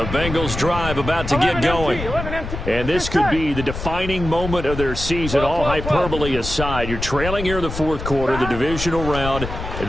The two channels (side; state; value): left; noise; rumble, 7 dB below the sound